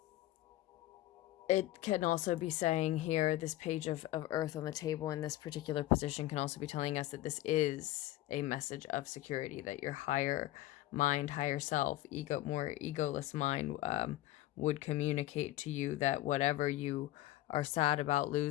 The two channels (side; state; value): right; quieter; 15.5 dB